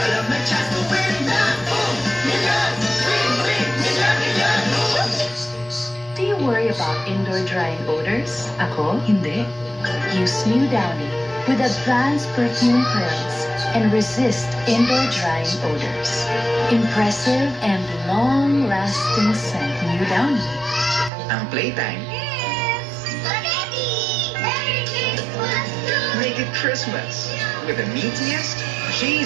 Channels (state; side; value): drops out; left; at 21.1 s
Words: may chance to win na. Million! Win! Win! Million! Million! Do you worry about indoor drying odors? Ako, hindi. Use New Downy with advanced perfume pearls and resist indoor drying odors. Impressive and long-lasting scent. New Downy. Ang playtime, Spaghetti! Merry Christmas! make it Christmas with the meatiest,